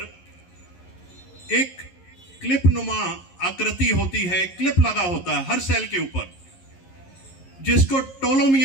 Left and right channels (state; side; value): late; right; 11 ms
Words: एक क्लिप नुमा आकृति होती है, क्लिप लगा होता है हर सेल के ऊपर, जिसको